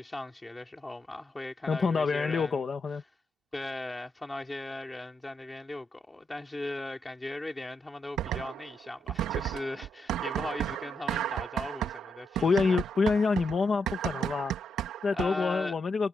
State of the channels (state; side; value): normal; both; correlation 0.81